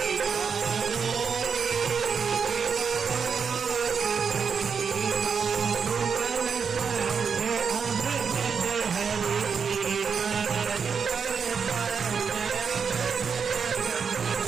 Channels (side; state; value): left; quieter; 6.2 dB